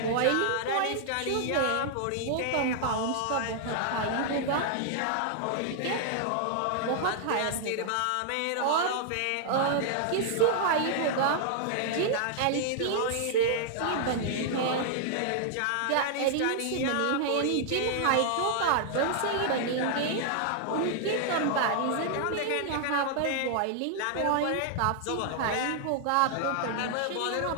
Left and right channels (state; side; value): different; both; correlation -0.01